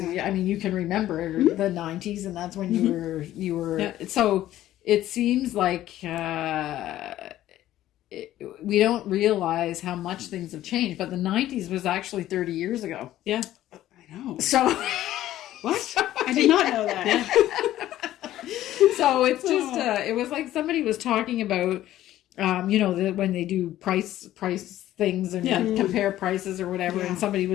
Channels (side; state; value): right; quieter; 13.7 dB